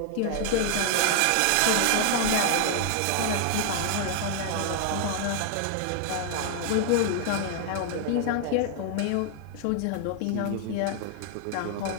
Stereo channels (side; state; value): both; different; correlation 0.00